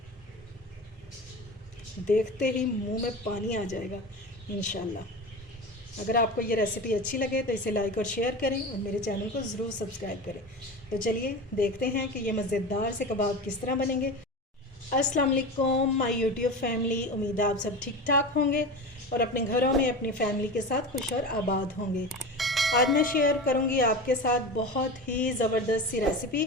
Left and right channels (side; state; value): both; normal; correlation 0.27